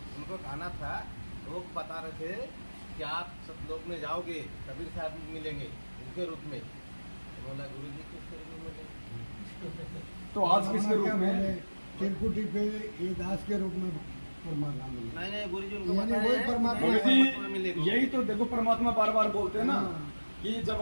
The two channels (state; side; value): inverted; both; correlation -1.00